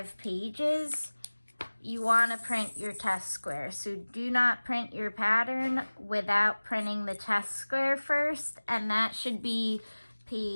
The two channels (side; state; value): both; inverted; correlation -1.00